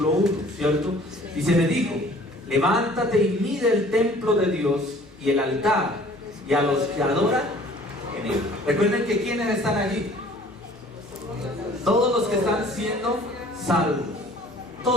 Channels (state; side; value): noise; right; hum, 26 dB below the sound